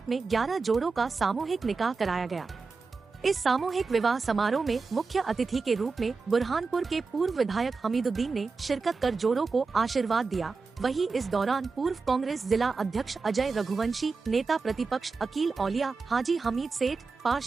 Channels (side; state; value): left; quieter; 4.4 dB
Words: में 11 जोड़ों का सामूहिक निकाह कराया गया। इस सामूहिक विवाह समारोह में मुख्य अतिथि के रूप में बुरहानपुर के पूर्व विधायक हमीदुद्दीन ने शिरकत कर जोड़ों को आशीर्वाद दिया। वहीं इस दौरान पूर्व कांग्रेस जिला अध्यक्ष अजय रघुवंशी, नेता प्रतिपक्ष अकील औलिया, हाजी हमीद सेठ,